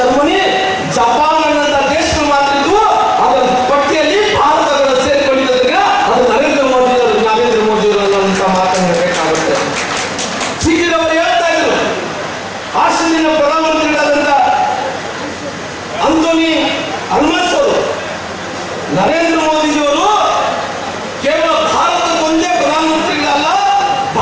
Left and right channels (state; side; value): identical; both; correlation 1.00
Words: Japan ಅನ್ನಂತ ದೇಶಗಳು ಮಾತ್ರ ಇದ್ವು. ಅದರ ಪಟ್ಟಿಯಲ್ಲಿ ಭಾರತಗಳು ಸೇರಿಕೊಂಡಿದ್ದರಿಂದ ಅದು ನರೇಂದ್ರ ಮೋದಿಯವರು ಅನ್ನುವಂತ ಮಾತನ್ನು ಹೇಳಬೇಕಾಗುತ್ತೆ. ಸಿಕ್ಕಿದವರು ಹೇಳ್ತಾ ಇದ್ರು, ಆಸ್ಟ್ರೇಲಿಯಾ ಪ್ರಧಾನಮಂತ್ರಿಗಳಾದಂತ ಅಂಥೋನಿ ಅಲ್ಬನೀಸ್ ಅವರು ನರೇಂದ್ರ ಮೋದಿಜಿಯವರು ಕೇವಲ ಭಾರತಕ್ಕೊಂದೇ ಪ್ರಧಾನಮಂತ್ರಿಗಳಲ್ಲ,